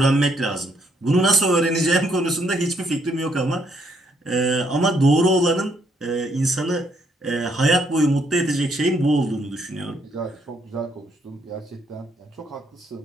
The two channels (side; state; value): both; normal; correlation 0.71